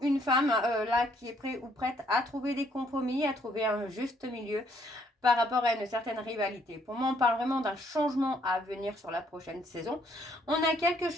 une femme là qui est prêt ou prête à trouver des compromis, à trouver un juste milieu par rapport à une certaine rivalité. Pour moi, on parle vraiment d'un changement à venir sur la prochaine saison. On a quelque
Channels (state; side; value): normal; both; correlation 0.68